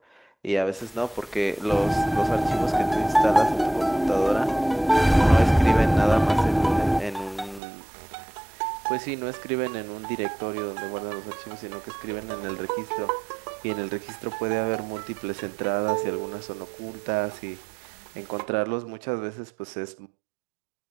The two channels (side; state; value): left; drops out; at 7.6 s